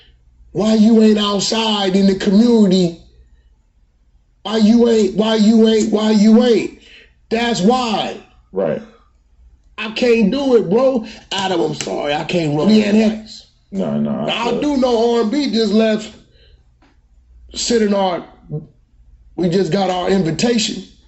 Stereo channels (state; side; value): identical; both; correlation 1.00